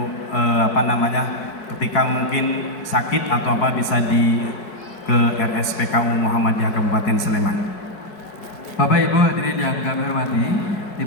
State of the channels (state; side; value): late; right; 4.6 ms